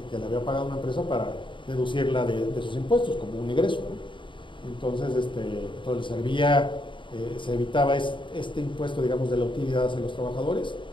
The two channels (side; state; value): right; late; 0.24 ms